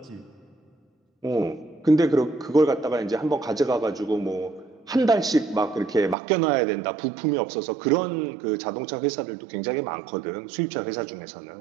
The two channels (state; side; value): drops out; left; at 6.2 s